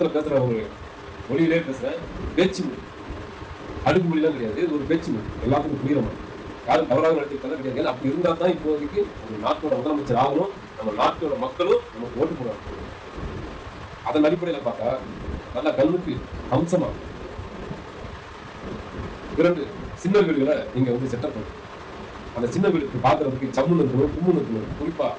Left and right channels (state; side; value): identical; both; correlation 1.00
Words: பேசுறவங்க மொழியிலே பேசுறேன், பேச்சு மொழி, அடுக்கு மொழிலாம் கிடையாது. இது ஒரு பேச்சு மொழி, எல்லாத்துக்கும் புரியுற மாதிரி. யாரும் தவறாக நடத்திக்கலாம் கிடையாது. அப்படி இருந்தா தான் இப்போதைக்கு ஒரு நாட்டோட முதலமைச்சர் ஆகணும், நம்ம நாட்டோட மக்களும் நமக்கு ஓட்டு போடுவாங்க. அதன் அடிப்படையில் பார்த்தா நல்ல கல்விக்கு அம்சமா 2 சின்ன வீடுகளை நீங்க வந்து செட்டப் பண்ணுங்க. அந்த சின்ன வீடுக்கு பாக்குறதுக்கு சம்முன்னு இருக்கணும், கும்முன்னு இருக்கணும். குறிப்பா